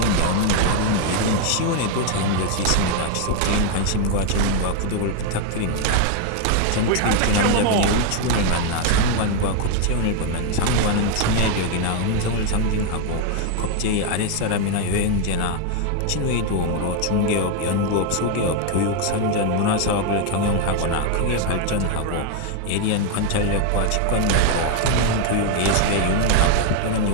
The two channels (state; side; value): different; both; correlation 0.01